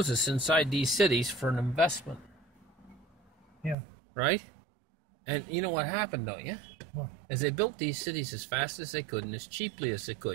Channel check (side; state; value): left; drops out; at 3.8 s